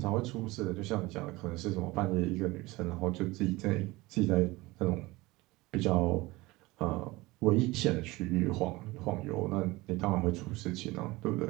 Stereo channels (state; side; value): quieter; left; 21.0 dB